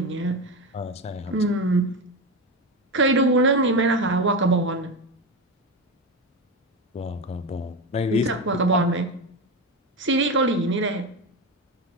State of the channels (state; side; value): normal; both; correlation 0.17